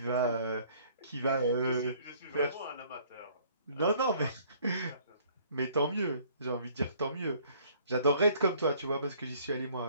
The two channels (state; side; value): inverted; both; correlation -0.58